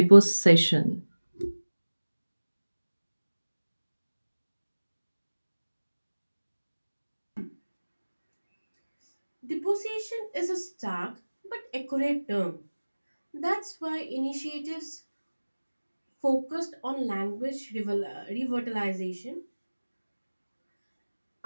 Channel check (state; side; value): inverted; both; correlation -1.00